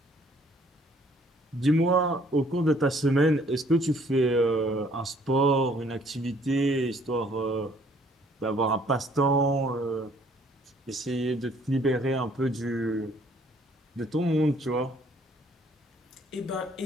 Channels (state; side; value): normal; both; correlation 0.62